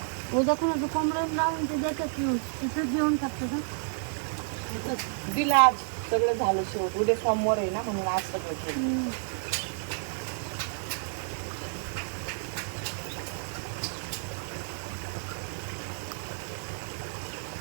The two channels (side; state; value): left; silent; 58 dB below the other